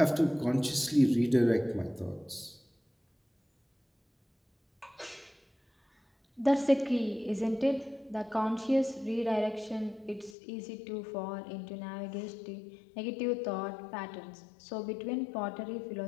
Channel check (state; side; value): drops out; right; at 10.4 s